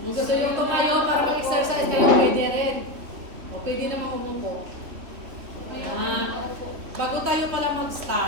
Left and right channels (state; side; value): late; left; 3.0 ms